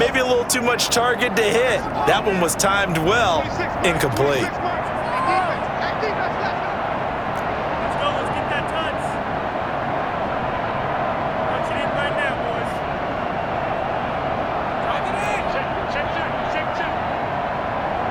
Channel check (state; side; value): identical; both; correlation 1.00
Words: a little too much target to hit. That one was timed well, incomplete.